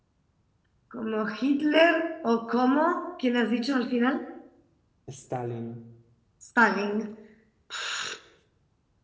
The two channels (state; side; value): identical; both; correlation 1.00